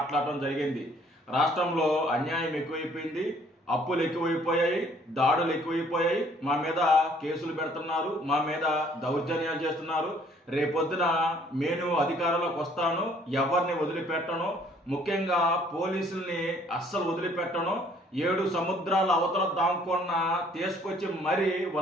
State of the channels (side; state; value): both; normal; correlation 0.60